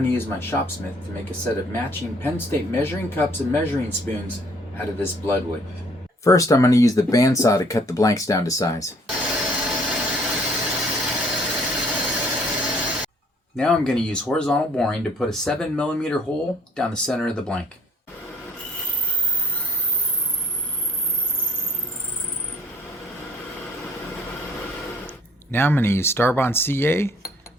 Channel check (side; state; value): both; normal; correlation 0.59